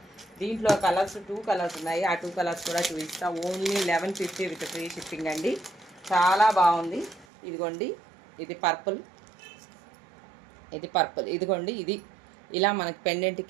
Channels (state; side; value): drops out; left; at 7.2 s